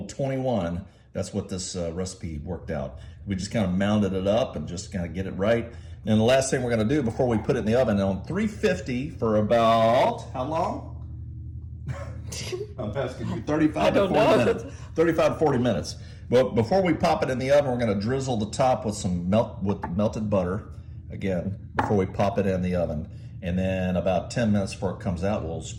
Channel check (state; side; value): identical; both; correlation 1.00